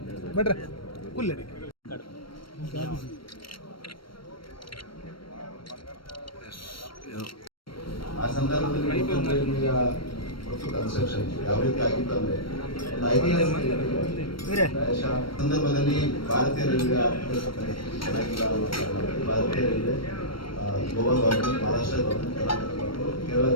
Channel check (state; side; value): late; right; 0.74 ms